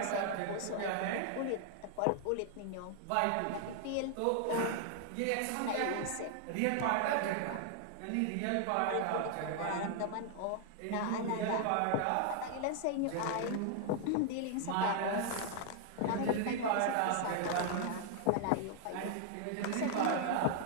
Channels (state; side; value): different; both; correlation 0.00